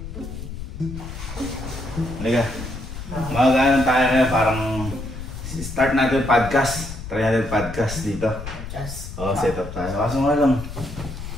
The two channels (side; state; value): left; noise; rumble, 9 dB below the sound